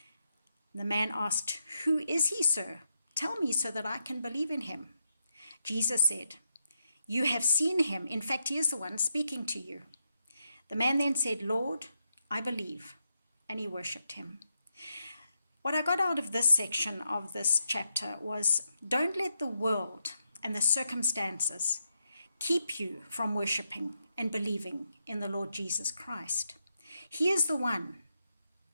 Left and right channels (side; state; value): both; inverted; correlation -0.82